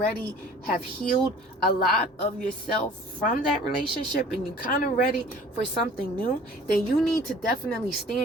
have healed a lot of yourself from that relationship and you're kind of ready for something new, then you need to definitely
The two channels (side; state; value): both; normal; correlation 0.48